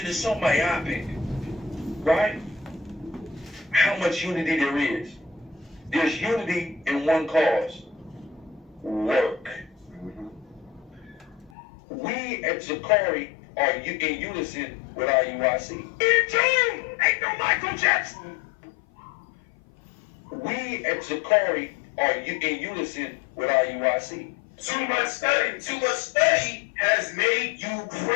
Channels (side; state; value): right; drops out; at 11.5 s